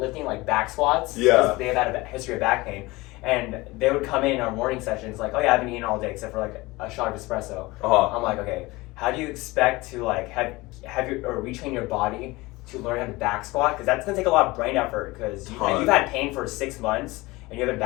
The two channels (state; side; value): quieter; right; 21.8 dB